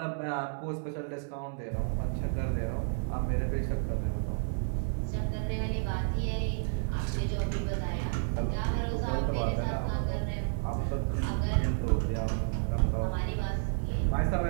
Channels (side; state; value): left; silent; 57 dB below the other